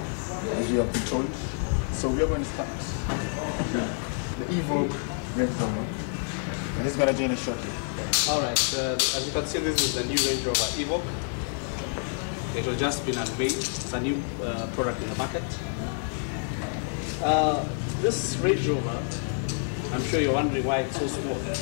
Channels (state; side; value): silent; right; 59 dB below the other